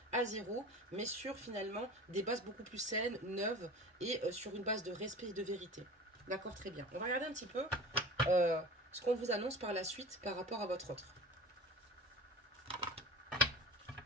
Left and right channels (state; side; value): normal; both; correlation 0.36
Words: à zéro, mais sur, finalement, des bases beaucoup plus saines, neuves, et sur une base de respect et de vérité. D'accord, très bien. On va regarder un petit peu ce qu'on vous annonce par la suite par rapport à votre autre.